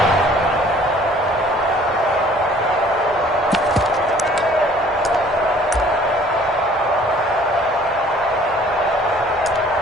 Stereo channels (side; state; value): both; normal; correlation 0.54